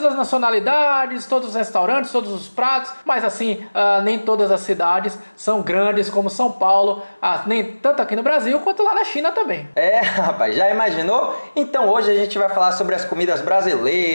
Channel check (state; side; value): inverted; both; correlation -1.00